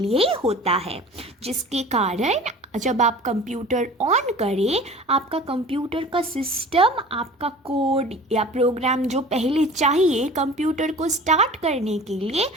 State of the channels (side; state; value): both; normal; correlation 0.42